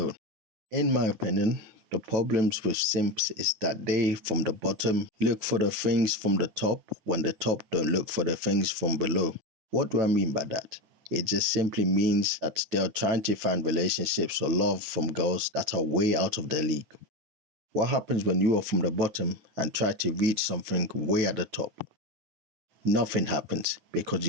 In my opinion, the problems with simps is that they, from the bottom, look for the things from the top when the top don't look for the things from below. What do I mean by that? It just simply means that they are trying to find relationships or love from girls that are way out of their league. What happens when you are from the bottom and try to reach something way at the top? Nothing happens because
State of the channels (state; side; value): late; left; 9.2 ms